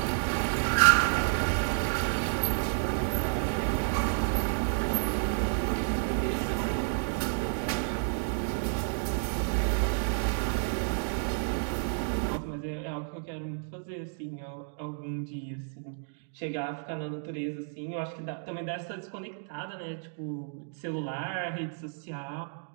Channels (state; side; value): silent; left; digital silence